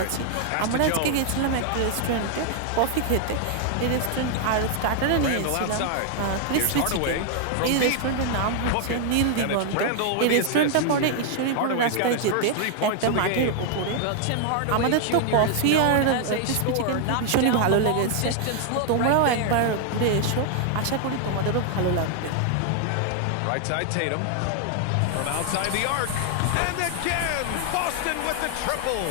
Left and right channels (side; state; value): both; different; correlation 0.00